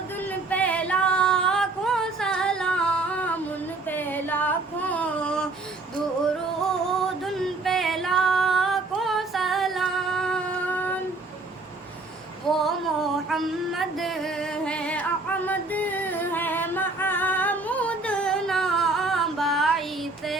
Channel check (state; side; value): quieter; left; 3.4 dB